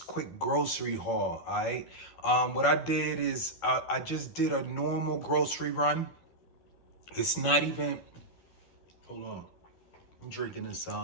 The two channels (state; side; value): late; right; 12 ms